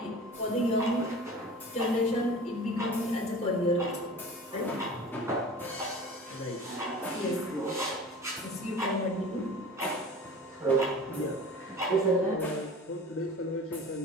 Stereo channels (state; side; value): normal; both; correlation 0.39